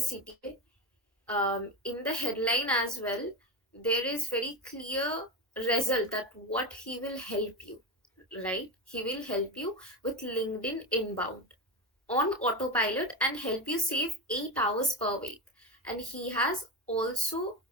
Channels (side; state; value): both; normal; correlation 0.18